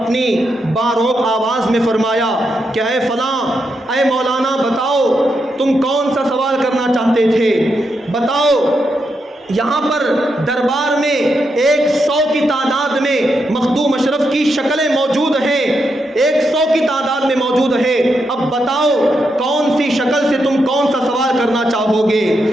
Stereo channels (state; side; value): normal; both; correlation 0.83